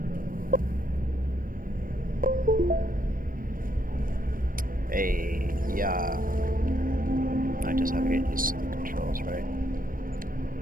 Hey, yeah. I just have to get used to the controls, right?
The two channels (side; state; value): left; late; 0.41 ms